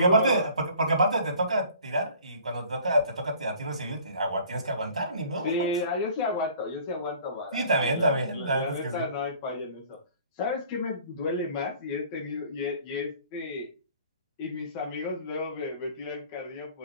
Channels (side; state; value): both; inverted; correlation -0.51